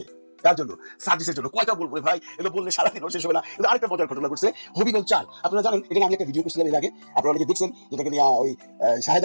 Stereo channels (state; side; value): inverted; both; correlation -1.00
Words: তার জন্য সার্ভিসের জন্য কয়টা বলবো ভাই, এগুলো বললে সারাদিন শেষ হবে না। কিন্তু আরেকটা মজার ঘটনা ঘটছে হবিগঞ্জ 4। আপনারা জানেন, এখানে আমি একটা ভিডিও করছিলাম এর আগে, আপনারা অনেকে দেখছেন, যেটাকে নিয়ে ওই শাহেদ